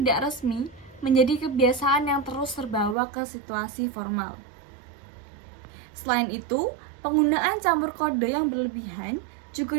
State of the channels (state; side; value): drops out; left; at 3.0 s